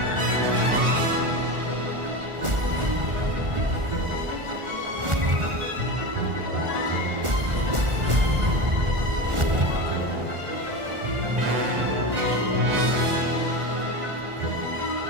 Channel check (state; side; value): late; left; 1.4 ms